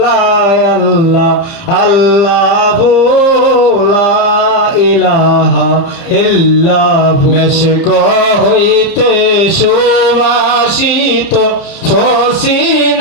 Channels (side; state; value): right; late; 30 ms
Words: আল্লাহ আল্লাহু লা ইলাহা ইল্লাহু মেশক হইতে সুবাসিত